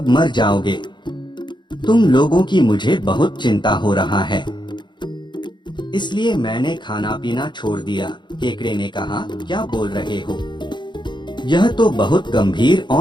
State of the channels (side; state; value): right; late; 0.22 ms